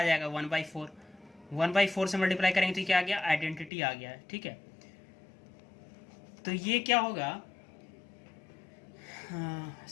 जाएगा, 1/4। 1/4 से मल्टीप्लाई करेंगे तो क्या आ गया, आइडेंटिटी आ गया है, ठीक है। तो ये क्या होगा,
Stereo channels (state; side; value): drops out; right; at 3.7 s